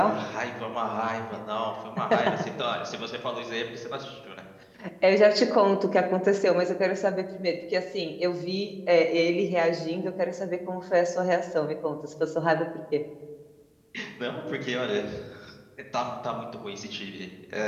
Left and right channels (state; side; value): identical; both; correlation 1.00